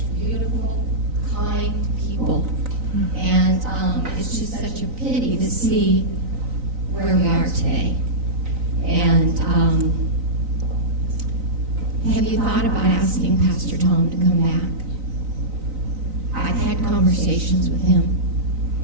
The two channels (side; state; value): left; late; 3.9 ms